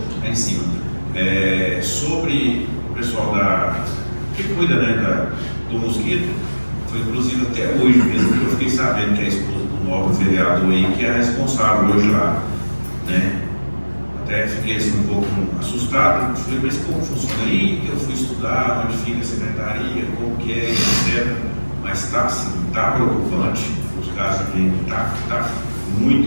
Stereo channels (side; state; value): both; inverted; correlation -1.00